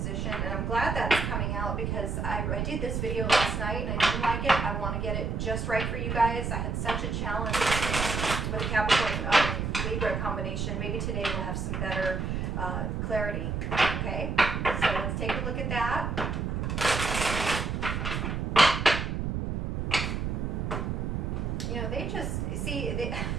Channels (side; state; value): right; noise; rumble, 1 dB below the sound